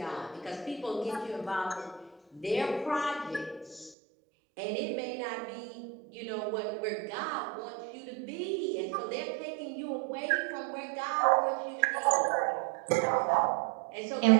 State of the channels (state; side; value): drops out; left; at 4.0 s